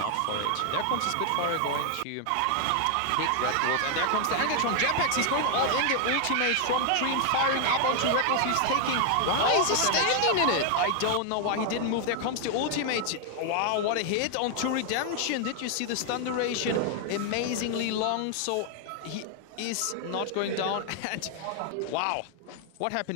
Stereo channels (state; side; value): different; both; correlation 0.00